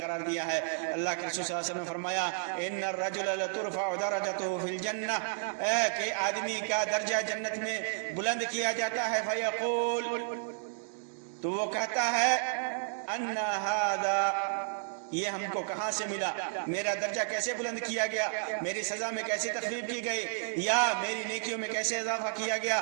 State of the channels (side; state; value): left; silent; digital silence